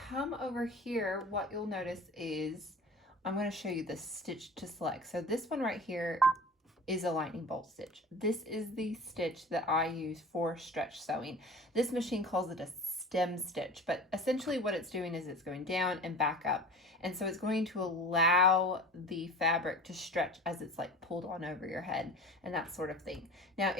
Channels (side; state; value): both; normal; correlation 0.38